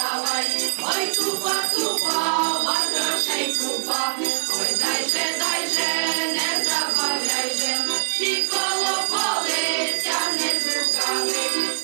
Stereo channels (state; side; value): silent; left; 59 dB below the other